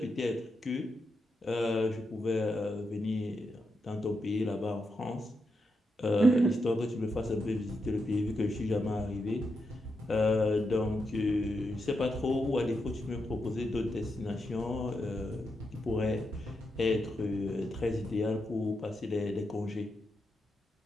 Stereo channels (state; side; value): normal; both; correlation 0.85